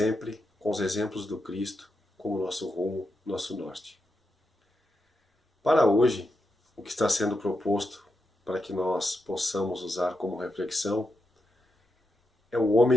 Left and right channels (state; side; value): normal; both; correlation 0.86